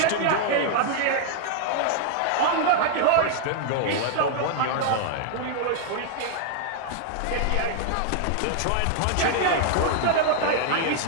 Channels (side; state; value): both; different; correlation 0.00